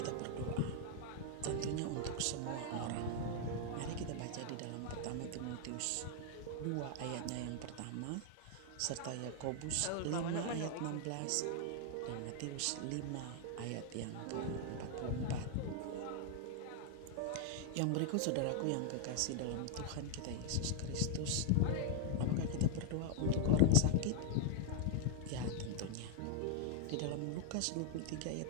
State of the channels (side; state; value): both; different; correlation 0.00